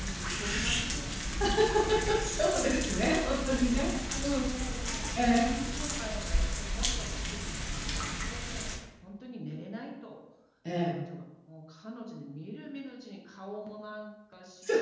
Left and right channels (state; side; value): identical; both; correlation 1.00